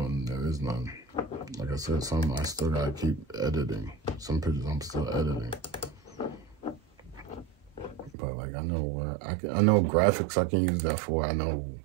there is none. Like I said, some I still gotta keep editing. Some pictures I'm still editing, but like, I know where I know graphics I can use that for. I know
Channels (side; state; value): left; drops out; at 8.2 s